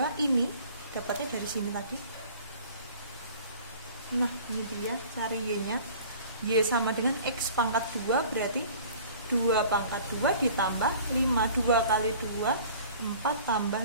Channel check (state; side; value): inverted; both; correlation -0.47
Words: ini. Dapatnya dari sini tadi. Nah, ini dia, cari Y-nya. Y sama dengan X pangkat 2 berarti 2 pangkat 2 ditambah 5. 2 kali 2, 4 tambah